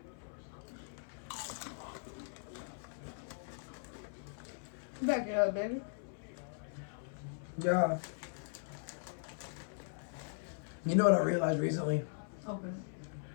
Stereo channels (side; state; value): right; silent; 52 dB below the other